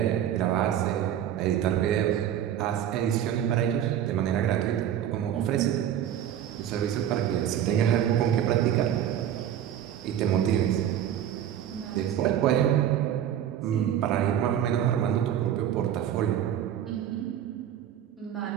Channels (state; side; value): quieter; left; 10.5 dB